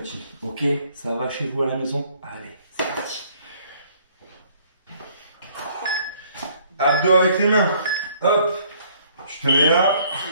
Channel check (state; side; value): inverted; both; correlation -0.61